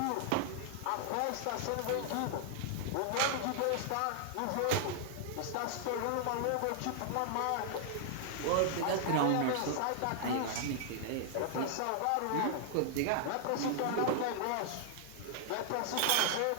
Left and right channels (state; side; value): different; both; correlation -0.01